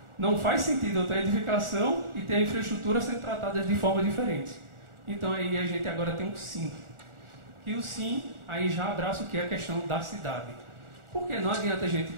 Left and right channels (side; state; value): left; late; 1.4 ms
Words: faz sentido eu ter a edificação e ter a infraestrutura sendo tratadas de forma diferente. Então aí a gente agora tem um SIM. E o SIM aí já abraça o que é a questão da cidade. Porque não adianta a gente